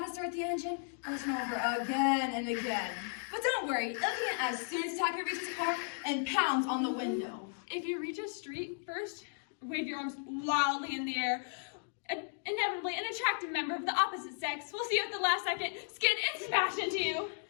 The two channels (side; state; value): right; silent; digital silence